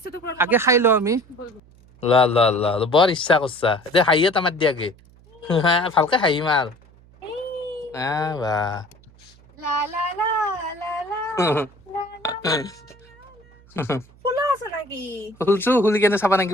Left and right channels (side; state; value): right; noise; hum, 27 dB below the sound